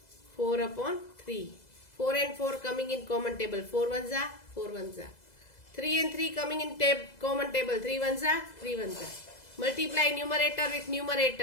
4 upon 3. 4 and 4 coming in common table. 4 ones are 4 ones are. 3 and 3 coming in common table. 3 ones are 3 ones are. Multiply numerator with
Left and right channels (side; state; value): right; late; 2.0 ms